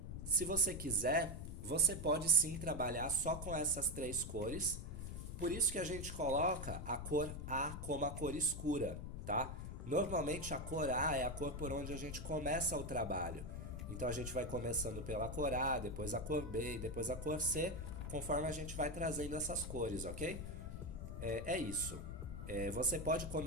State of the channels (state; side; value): noise; left; rumble, 7 dB below the sound